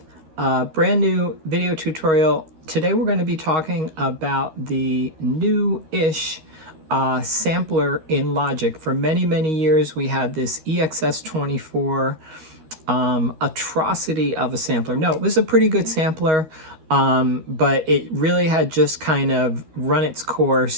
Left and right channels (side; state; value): left; late; 13 ms